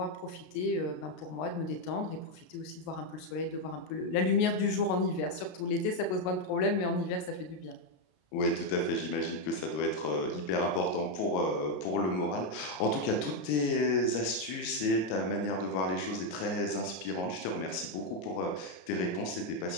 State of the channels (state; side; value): late; right; 33 ms